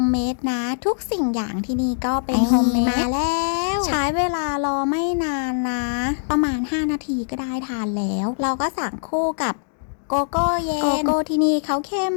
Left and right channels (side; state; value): right; silent; digital silence